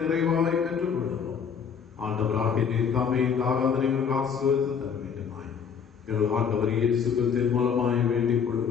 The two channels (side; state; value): right; quieter; 6.9 dB